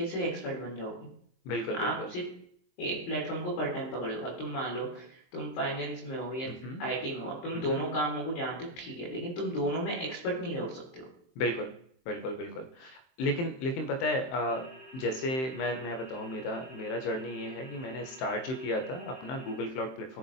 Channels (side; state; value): right; late; 23 ms